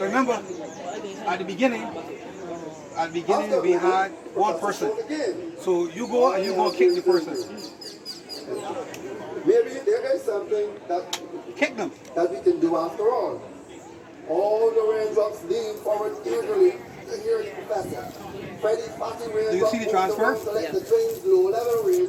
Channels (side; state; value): both; identical; correlation 1.00